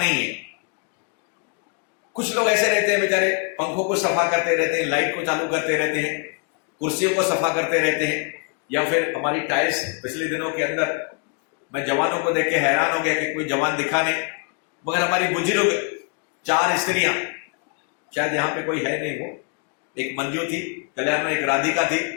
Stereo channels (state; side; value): quieter; right; 36.2 dB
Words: है। कुछ लोग ऐसे रहते हैं बेचारे, पंखों को सफा करते रहते हैं, लाइट को चालू करते रहते हैं, कुर्सियों को सफा करते रहते हैं, या फिर हमारी टाइल्स। पिछले दिनों के अंदर मैं जवानों को देख के हैरान हो गया कि कोई जवान दिखा नहीं, मगर हमारी बुजुर्ग 4 स्त्रियां, शायद यहां पे कोई है नहीं, वो एक मंजू थी कल्याण में, एक राधिका थी,